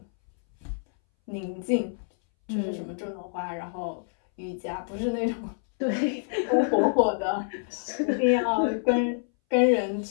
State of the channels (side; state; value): right; silent; 60 dB below the other